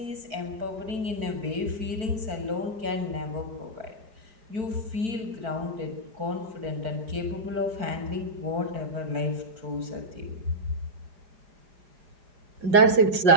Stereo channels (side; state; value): left; late; 5.4 ms